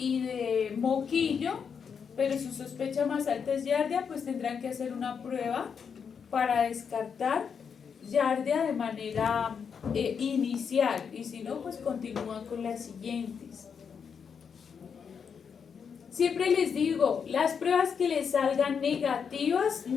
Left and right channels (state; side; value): quieter; right; 6.6 dB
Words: de moquillo, pero su sospecha más alta es giardia, pues tendrán que hacer una prueba para descartar giardia de manera inicial, y si no, pues continúan con las siguientes. Siempre les digo, las pruebas que les salgan negativas